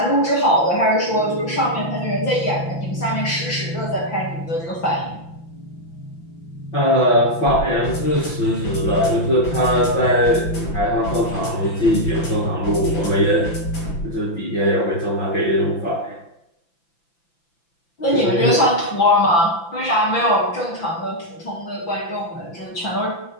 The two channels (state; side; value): late; right; 5.9 ms